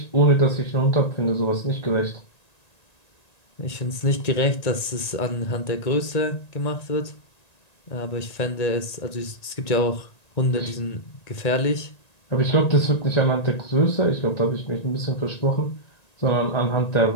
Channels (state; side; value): late; right; 1.9 ms